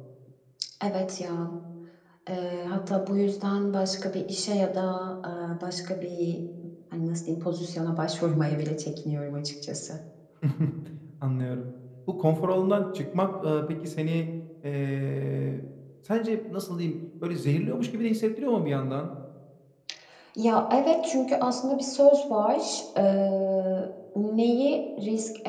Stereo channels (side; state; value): both; identical; correlation 1.00